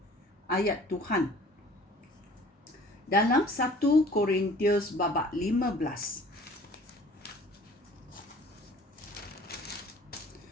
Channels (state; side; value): normal; both; correlation 0.49